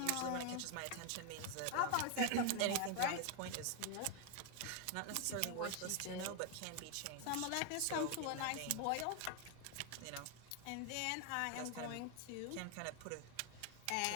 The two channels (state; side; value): different; both; correlation 0.01